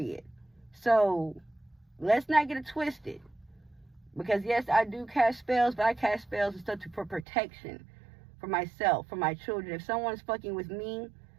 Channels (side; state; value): left; drops out; at 7.2 s